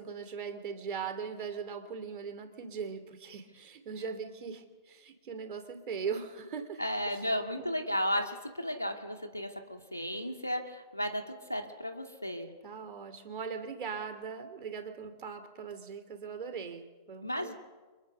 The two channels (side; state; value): both; inverted; correlation -0.57